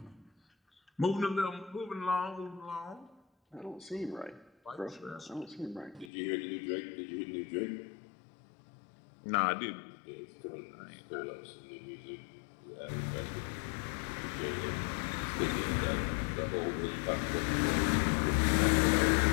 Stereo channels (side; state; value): right; drops out; at 6.1 s